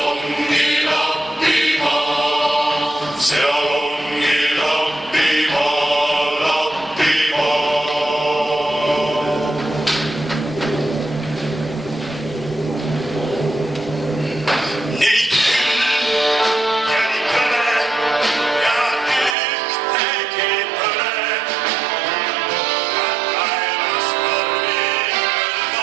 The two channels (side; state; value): left; drops out; at 19.4 s